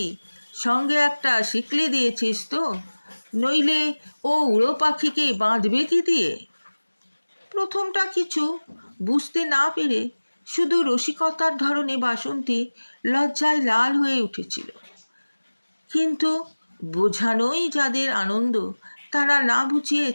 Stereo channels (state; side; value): inverted; both; correlation -1.00